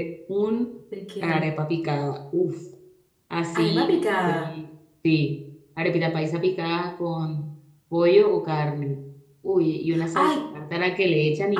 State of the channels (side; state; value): both; identical; correlation 1.00